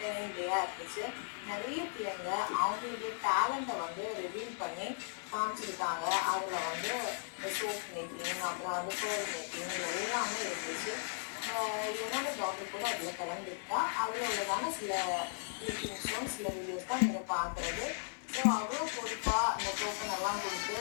டேயாக இருந்துச்சு. நிறைய பிள்ளைங்க அவங்களுடைய டேலண்ட்டை வந்து ரிவீல் பண்ணி காமிச்சிருக்காங்க. அதில் வந்து சோப் மேக்கிங், அப்புறம் வந்து ஃபோர் மேக்கிங், எல்லாமே இருந்துச்சு. என்னோட டாக்டர் கூட அதில் கலந்துருக்கா. அதில் உள்ளதான சில கிளிப்பிங்ஸும் சில வீடியோஸ் தான் நீங்கள் பார்க்குறது. ஸோ அவ்வளோ பொறுப்பாக அந்த டோக்கன் எல்லாம் கொடுத்து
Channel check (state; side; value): silent; right; digital silence